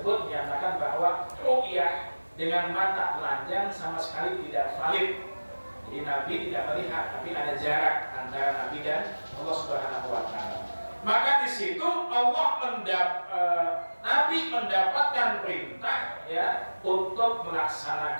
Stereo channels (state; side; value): inverted; both; correlation -1.00